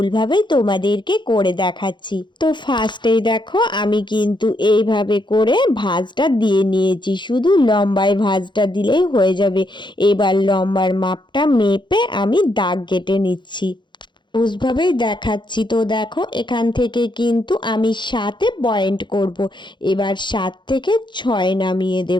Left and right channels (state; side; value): late; right; 0.23 ms